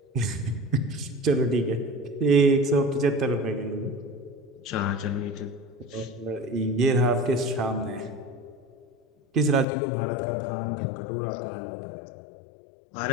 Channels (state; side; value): drops out; right; at 9.7 s